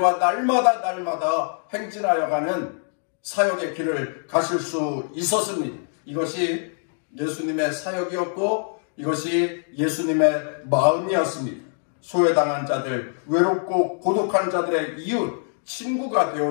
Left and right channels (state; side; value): silent; right; 63 dB below the other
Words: 날마다 행진하여 가는 사역의 길을 가실 수 있었습니다. 이것이 예수님의 사역이었고 이것이 예수님의 마음이었습니다. 소외당한 자들, 외롭고 고독한 자들의 이웃, 친구가